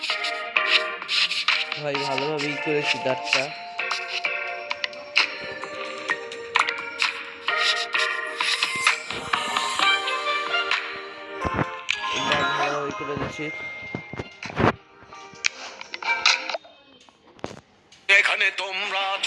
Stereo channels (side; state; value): both; identical; correlation 1.00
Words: ভাই ভালোভাবেই করেছি দাঁতটা। ভালোভাবে করে দিচ্ছি। এখানে তোমরা